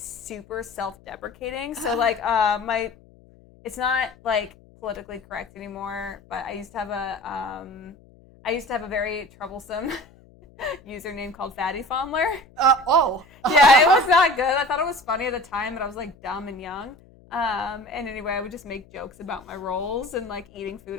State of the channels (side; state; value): left; noise; hum, 26 dB below the sound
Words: self-deprecating. So like it's not like politically correct anymore, but I used to have a very troublesome username called Fatty Fondler. Yeah, it was not good. I thought it was funny at the time, but I was like dumb and young. And anyway, I would just make jokes about my rolls and like eating